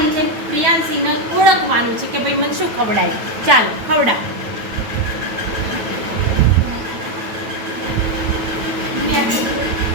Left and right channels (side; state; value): left; late; 9.1 ms